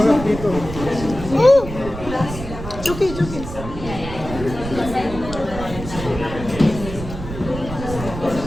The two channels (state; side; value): noise; right; rumble, 9 dB below the sound